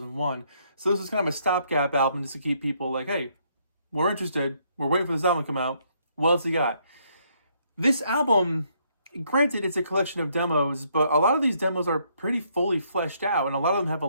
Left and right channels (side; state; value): both; inverted; correlation -0.70